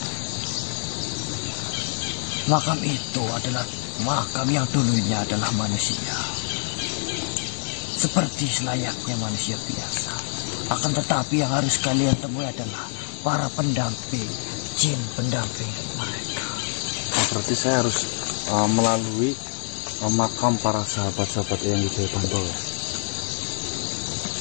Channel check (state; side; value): silent; right; 61 dB below the other